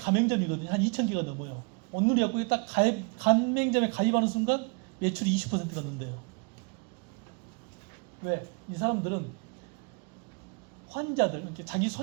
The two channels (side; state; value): left; quieter; 33.5 dB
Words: 한 2,000개가 넘어요. 온누리 약국에 딱 가맹점에 가입하는 순간 매출이 20%가 는대요. 왜? 이 사람들은 환자들, 이렇게 자기